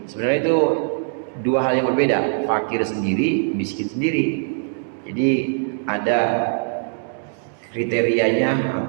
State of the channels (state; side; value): silent; left; 64 dB below the other